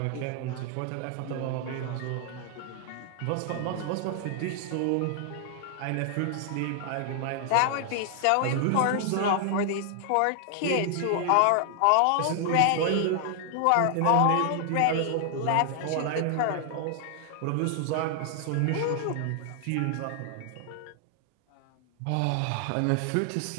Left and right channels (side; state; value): both; different; correlation 0.00